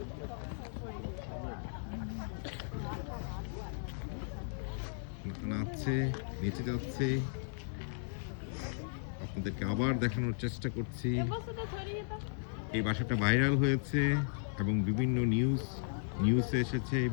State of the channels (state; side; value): silent; right; digital silence